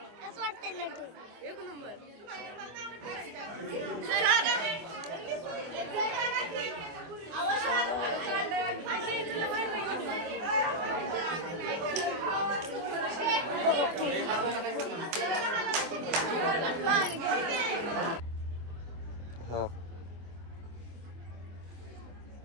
कसं वाटतंय लड्डू? एक नंबर. हा.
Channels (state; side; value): late; left; 24 ms